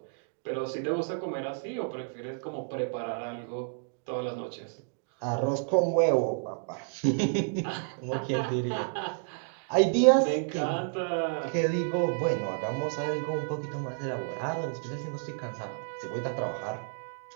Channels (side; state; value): left; silent; digital silence